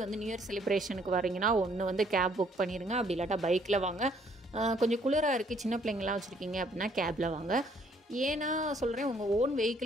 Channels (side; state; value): both; normal; correlation 0.64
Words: வந்து நியூ இயர் செலிப்ரேஷனுக்கு வரீங்கன்னா ஒன்று வந்து கேப் புக் பண்ணிடுங்க, அப்படி இல்லாட்டா பைக்கில் வாங்க. கொஞ்சம் குளிராக இருக்குது, சின்ன பிள்ளைங்களாம் வச்சுருக்கீங்க அப்படின்னா கேபில் வாங்க. ஏன்னா சொல்கிறேன், உங்கள் ஓன்